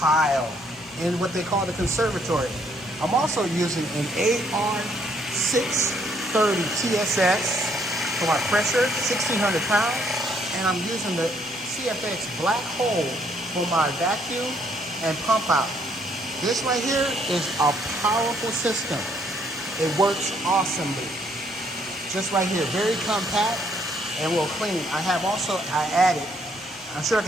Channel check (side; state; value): both; normal; correlation 0.68